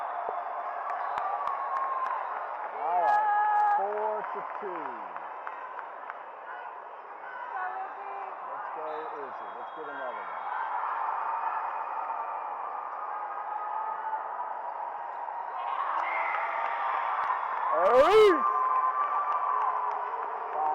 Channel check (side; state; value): both; identical; correlation 1.00